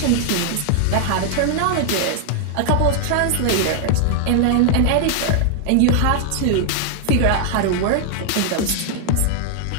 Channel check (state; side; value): different; both; correlation 0.00